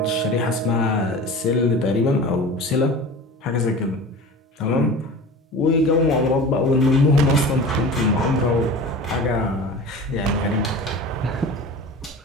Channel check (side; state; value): both; normal; correlation 0.36